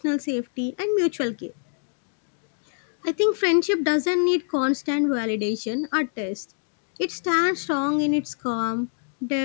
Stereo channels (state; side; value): silent; right; 62 dB below the other